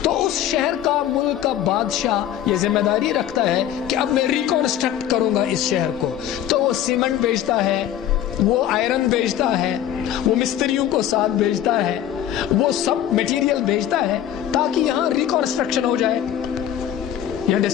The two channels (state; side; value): quieter; right; 11.0 dB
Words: تو اس شہر کا، ملک کا بادشاہ یہ ذمہ داری رکھتا ہے کہ اب میں ریکنسٹرکٹ کروں گا اس شہر کو. تو وہ سیمنٹ بیچتا ہے، وہ آئرن بیچتا ہے، وہ مستریوں کو ساتھ بیچتا ہے، وہ سب میٹیریل بیچتا ہے تاکہ یہاں ریکنسٹرکشن ہو جائے. یہاں